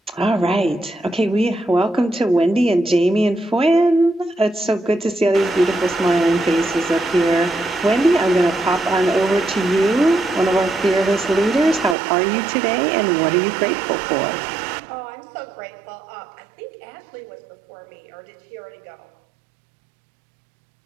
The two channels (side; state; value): left; drops out; at 12.0 s